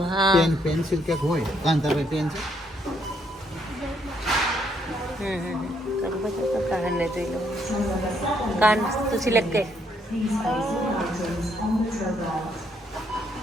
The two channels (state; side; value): normal; both; correlation 0.72